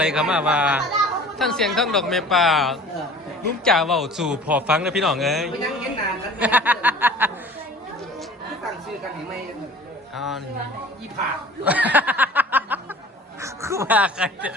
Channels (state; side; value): normal; both; correlation 0.45